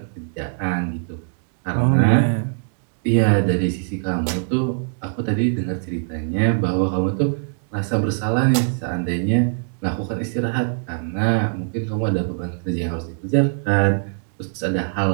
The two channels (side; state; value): left; silent; digital silence